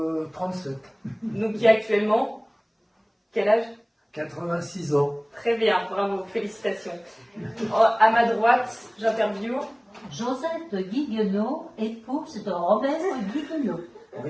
donc qui a actuellement, quel âge? 86 ans. Très bien, bravo, félicitations. À ma droite, j'interviewe Josette Guiguenot, épouse de Robert Guiguenot.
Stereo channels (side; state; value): both; identical; correlation 1.00